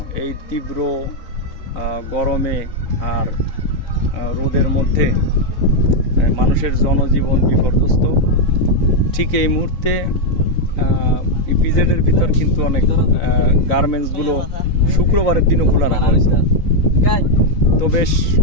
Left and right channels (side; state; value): right; late; 4.0 ms